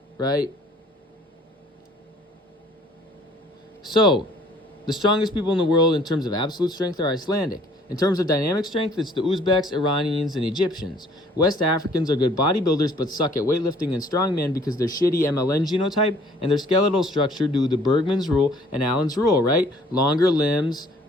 right? So, the strongest people in the world in terms of absolute strength are Icelandic. In terms of dynamic strength, it's the Uzbeks, Iranians, and Egyptians. West Africans are good bodybuilders but suck at weightlifting and strongman because they're shitty MLN genotype and their skeletal structure due to Bergman's rule and Allen's rule, right? Longer limbs,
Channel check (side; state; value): both; normal; correlation 0.57